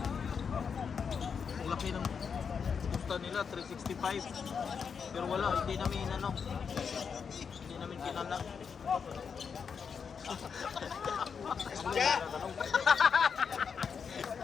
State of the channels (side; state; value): right; quieter; 6.3 dB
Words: Ang laki ng Gusto nila 365. Pero wala, hindi namin ano. Hindi namin kinala.